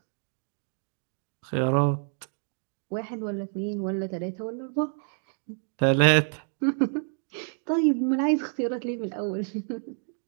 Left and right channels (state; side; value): silent; left; digital silence